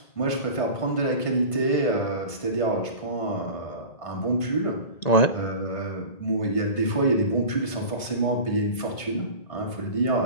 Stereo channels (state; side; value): late; right; 1.5 ms